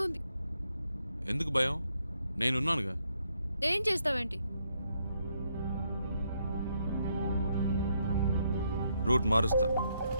ఉంది. ఎందుకు భయం? నేనున్నానుగా. ఏం చేస్తావేంటి? రూట్ మారుస్తా.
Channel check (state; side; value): inverted; both; correlation -0.75